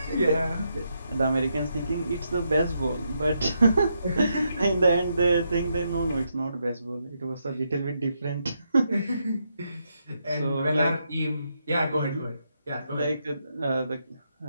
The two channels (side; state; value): both; inverted; correlation -0.80